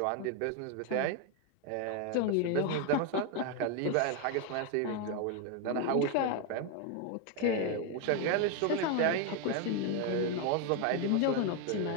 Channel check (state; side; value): different; both; correlation 0.01